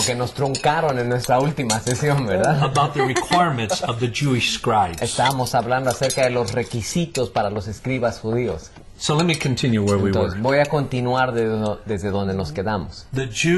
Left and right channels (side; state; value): both; identical; correlation 1.00